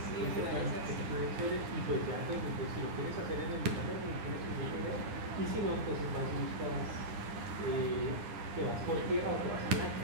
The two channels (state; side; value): late; left; 9.8 ms